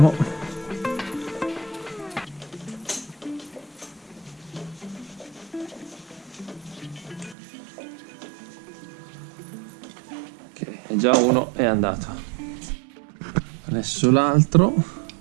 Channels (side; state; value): left; drops out; at 7.4 s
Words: Ok, già uno è andato. Adesso l'altro